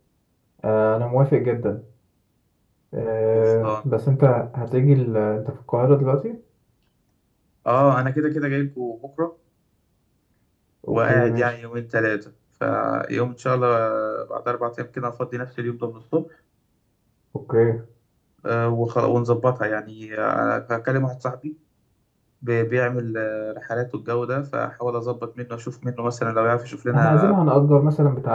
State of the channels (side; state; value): both; identical; correlation 1.00